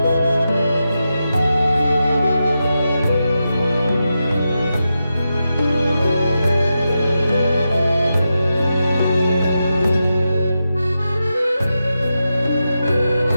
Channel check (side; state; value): both; inverted; correlation -0.89